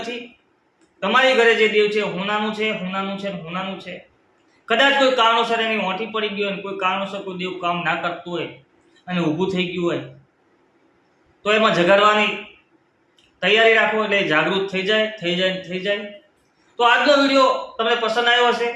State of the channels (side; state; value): both; identical; correlation 1.00